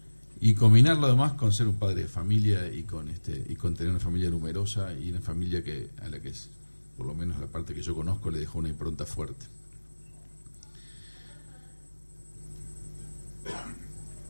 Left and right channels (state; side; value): inverted; both; correlation -1.00